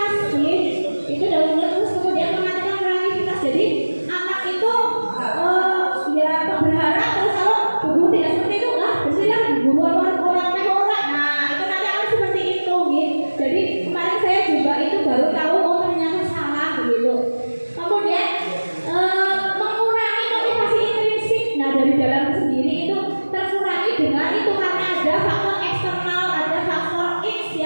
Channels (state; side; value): inverted; both; correlation -1.00